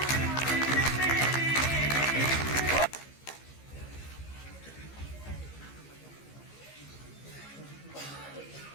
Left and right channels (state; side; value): late; right; 15 ms